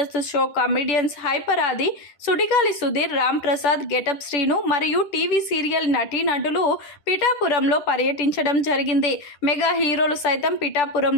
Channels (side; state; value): right; late; 10 ms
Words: షో కామెడియన్స్ హైపర్ ఆది, సుడిగాలి సుధీర్, రామ్ ప్రసాద్, గెటప్ శ్రీను మరియు టీవీ సీరియల్ నటీనటులు పిఠాపురంలో పర్యటించడం జరిగింది. మెగా హీరోలు సైతం